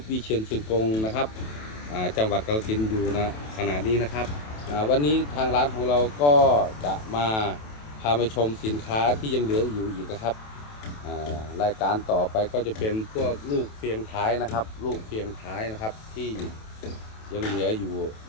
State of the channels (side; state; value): right; late; 27 ms